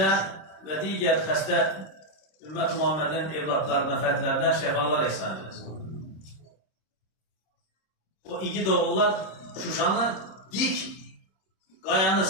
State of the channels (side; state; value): right; late; 26 ms